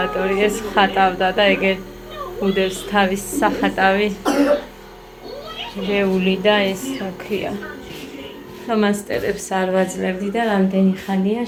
ეს ხატავდა და ეგერ უდევს თავის სახატავი რეული და ეს რა ქვია ფლომასტერებს არ ვაძლევდი და რამდენი ხანია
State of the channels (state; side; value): identical; both; correlation 1.00